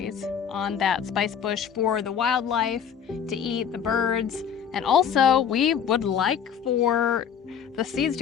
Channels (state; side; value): quieter; right; 7.9 dB